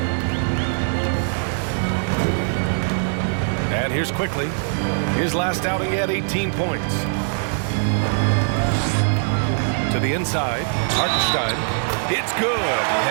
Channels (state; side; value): silent; left; 64 dB below the other